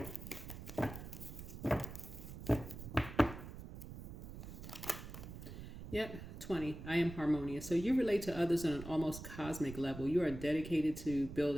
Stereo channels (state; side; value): noise; right; rumble, 11 dB below the sound